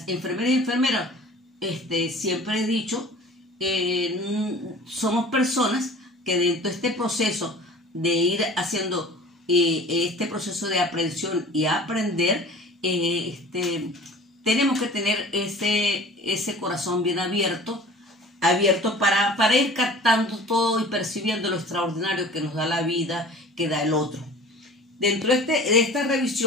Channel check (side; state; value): both; normal; correlation 0.43